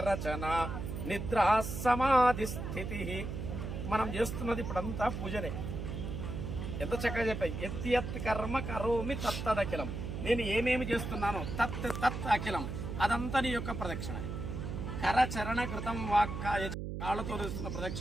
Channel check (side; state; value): right; noise; hum, 5 dB below the sound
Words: రచన నిద్రా సమాధి స్థితి. మనం చేస్తున్నది ఇప్పుడంతా పూజనే. ఎంత చక్కగా చెప్పాయి. ఎత్తి కర్మ కరోమి తత్తదఖిలం. నేను ఏమేమి చేస్తున్నానో తత్ అఖిలం, అదంతా నీ యొక్క ప్రదక్షిణ. కరచరణ కృతం వాక్కాయ, కాళ్ళతో చేస్తున్న